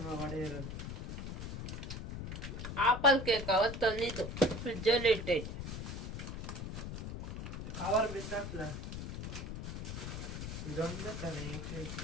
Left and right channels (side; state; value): left; noise; rumble, 6 dB below the sound